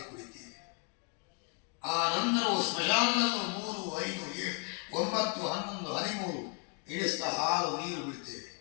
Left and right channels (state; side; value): quieter; right; 34.3 dB